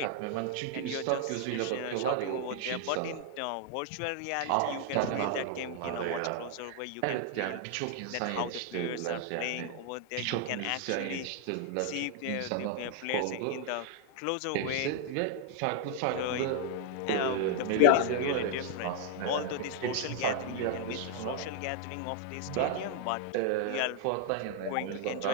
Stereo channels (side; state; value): both; different; correlation 0.00